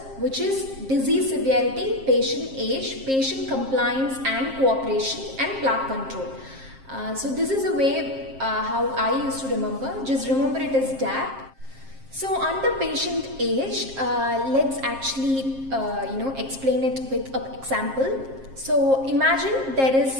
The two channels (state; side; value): late; left; 7.5 ms